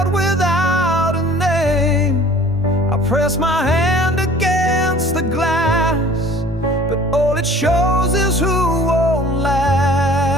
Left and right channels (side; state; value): both; normal; correlation 0.49